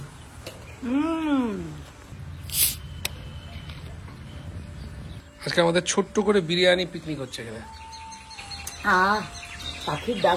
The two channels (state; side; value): identical; both; correlation 1.00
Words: আজকে আমাদের ছোট্ট করে বিরিয়ানি পিকনিক হচ্ছে এখানে। পাখির